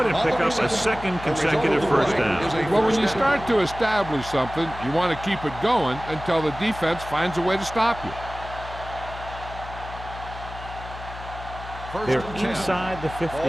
and pick up a second consecutive first down. Well, when you start to establish something, you want to keep it going until the defense finds a way to stop you. They're inside the 15.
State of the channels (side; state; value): left; noise; hum, 13 dB below the sound